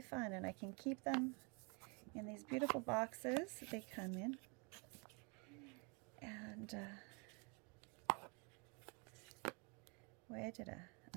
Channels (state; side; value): quieter; left; 33.1 dB